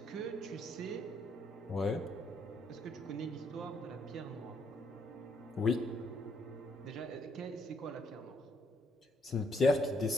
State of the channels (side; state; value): both; normal; correlation 0.72